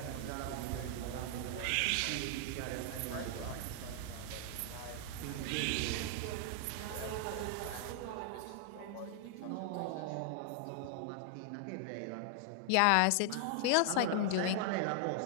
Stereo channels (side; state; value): both; different; correlation 0.00